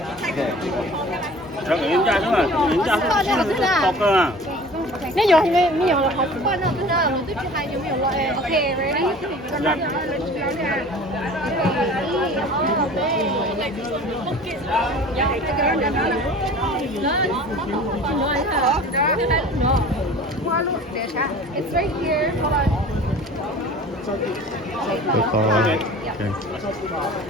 没有了，好吃。换上真的，我这批还有没有了？哎，OK， ready？It's right here. Hold on.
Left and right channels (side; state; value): both; normal; correlation 0.43